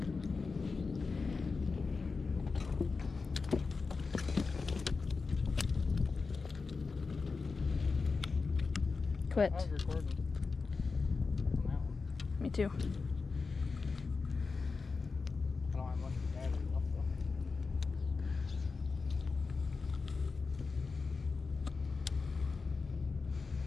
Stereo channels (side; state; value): right; quieter; 4.4 dB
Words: Quit. I was recording on that one. Me too. I don't have much battery left though.